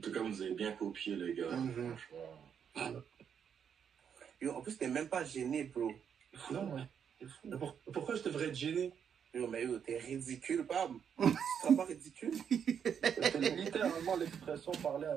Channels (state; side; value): quieter; left; 7.8 dB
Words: cas, vous avez bien copié, les gars. Franchement. Yo, en plus, t'es même pas gêné, bro. Non, ouais. Pourquoi je devrais être gêné? Yo, mais yo, t'es ridicule, Pam. Tu seras pas ridicule? C'est littéralement l'expression parler à